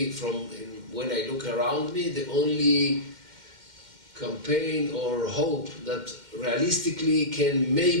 from when I look around me, the only campaign or hope that realistically can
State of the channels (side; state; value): left; late; 2.1 ms